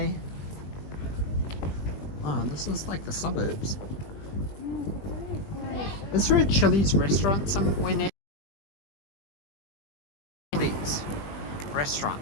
Oh, this is like the suburbs. Is there a Chili's restaurant somewhere near? Chili's restaurant.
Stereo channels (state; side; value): late; right; 20 ms